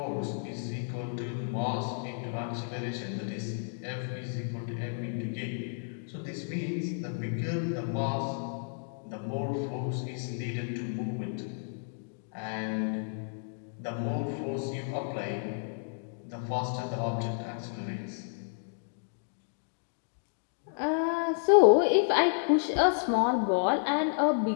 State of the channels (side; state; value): right; silent; digital silence